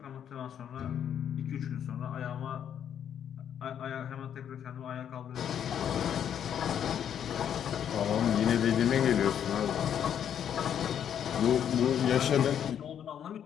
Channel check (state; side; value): quieter; right; 9.1 dB